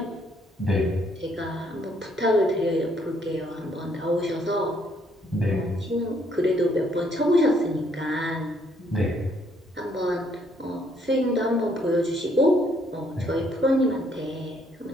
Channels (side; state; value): both; normal; correlation 0.69